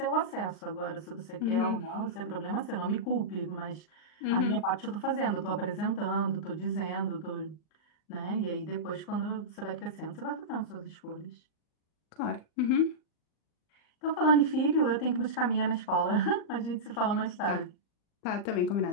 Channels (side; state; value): right; late; 38 ms